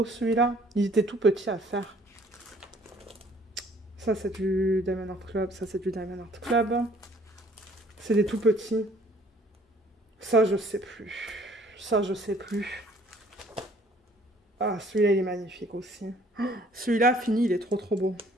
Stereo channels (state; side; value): normal; both; correlation 0.58